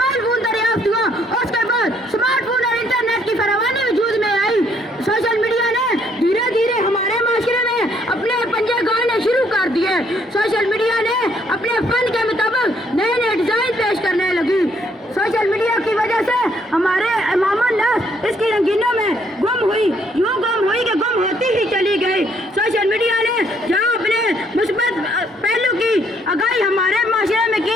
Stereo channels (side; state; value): both; normal; correlation 0.68